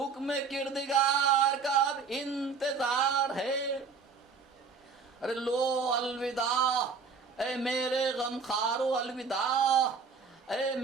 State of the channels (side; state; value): left; quieter; 5.2 dB